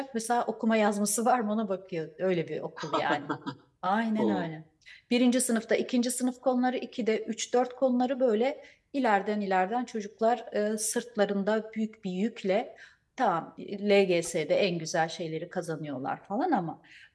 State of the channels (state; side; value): identical; both; correlation 1.00